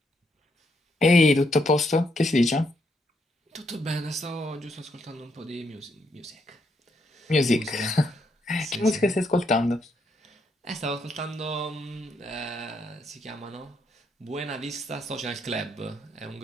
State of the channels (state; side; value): normal; both; correlation 0.76